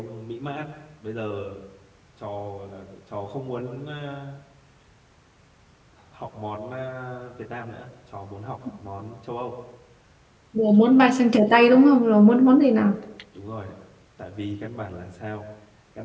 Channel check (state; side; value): identical; both; correlation 1.00